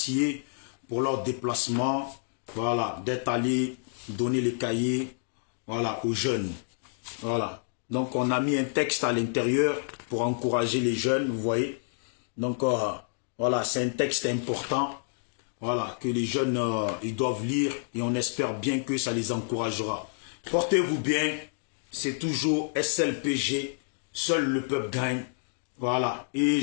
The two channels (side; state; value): right; silent; digital silence